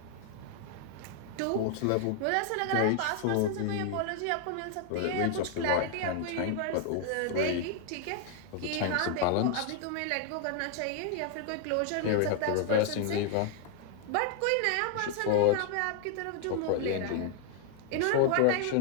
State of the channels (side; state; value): both; different; correlation 0.00